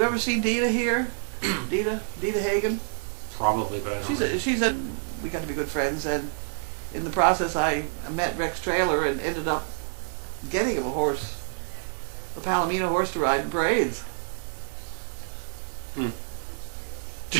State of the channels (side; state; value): left; silent; digital silence